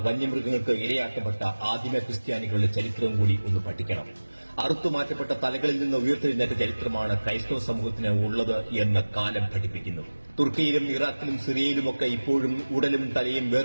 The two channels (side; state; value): both; inverted; correlation -1.00